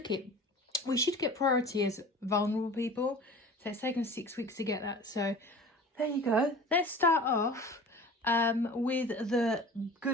it. We should get priority as vulnerable people. So it's taken 6 weeks to get that. So there you go. Let's start off with the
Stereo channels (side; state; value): both; normal; correlation 0.40